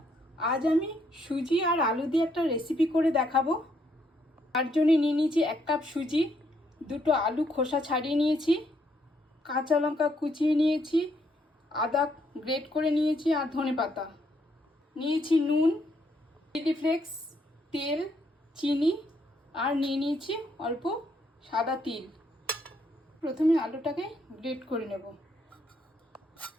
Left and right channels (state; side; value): normal; both; correlation 0.72